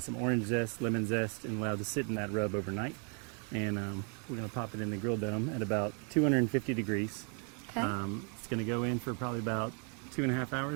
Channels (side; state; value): left; quieter; 38.7 dB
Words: orange zest, lemon zest, and allowed to sit in that rub overnight. And we're going to pop it in the grill dome at about 250 degrees. Okay. It's going to go in for probably about 2.5